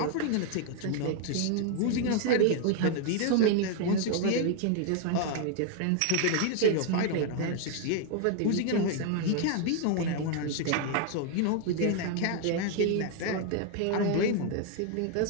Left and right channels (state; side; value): different; both; correlation 0.00